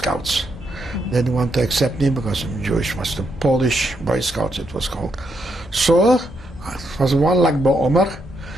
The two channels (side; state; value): both; normal; correlation 0.79